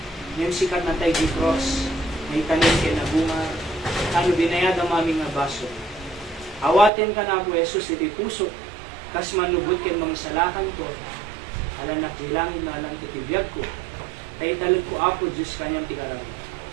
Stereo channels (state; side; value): drops out; left; at 6.9 s